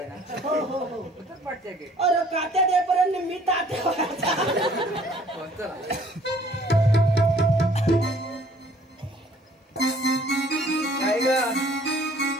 ना. हो हो हो. पाठच्या घेत. अरे कात्या देपर्यंत मी तात्या. चला काय ग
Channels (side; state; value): both; normal; correlation 0.57